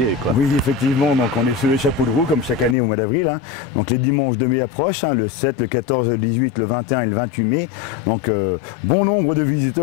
quoi. Oui, effectivement. Donc, on est sur les chapeaux de roue, comme chaque année au mois d'avril. Hein. Donc, les dimanches de mai approchent, hein, le 7, le 14, le 18, le 21 et le 28 mai. Donc, bon nombre de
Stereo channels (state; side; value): drops out; right; at 2.8 s